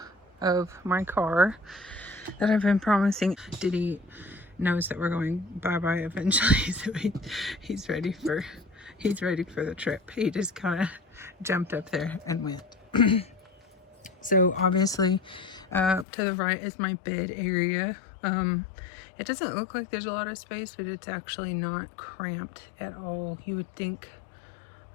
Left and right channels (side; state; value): right; drops out; at 16.1 s